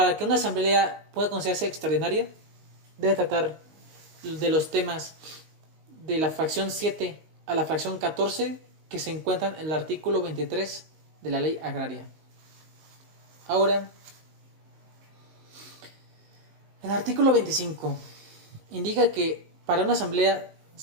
que una asamblea pueda considerarse extraordinaria, debe tratar de los temas de la fracción 7 a la fracción 14 que se encuentran en el artículo 23 de la ley agraria. Ahora, el artículo 25 indica que para una asamblea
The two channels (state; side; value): late; left; 19 ms